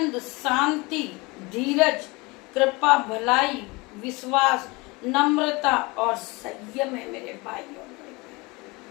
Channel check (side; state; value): right; quieter; 25.1 dB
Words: शांति, धीरज, कृपा, भलाई, विश्वास, नम्रता और संयम है मेरे भाइयों।